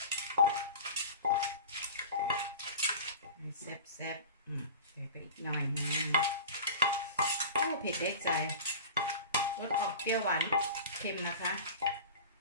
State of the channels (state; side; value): inverted; both; correlation -0.34